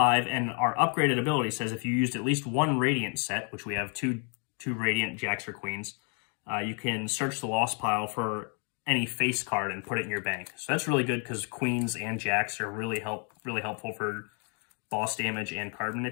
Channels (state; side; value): quieter; right; 38.9 dB